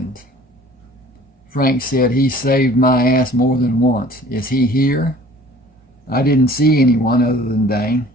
Frank said he saved my ass more than once. Is he here? I didn't see anyone other than Dane.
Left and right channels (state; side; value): normal; both; correlation 0.50